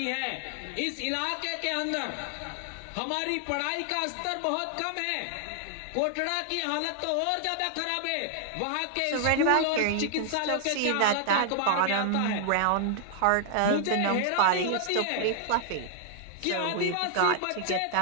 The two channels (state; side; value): different; both; correlation 0.00